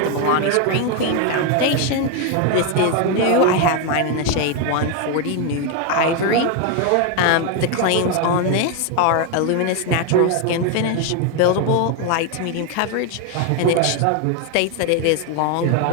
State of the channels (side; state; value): both; different; correlation 0.01